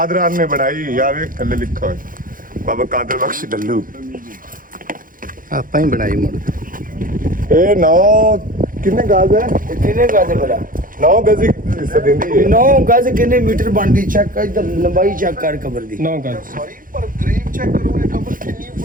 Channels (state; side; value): late; left; 0.40 ms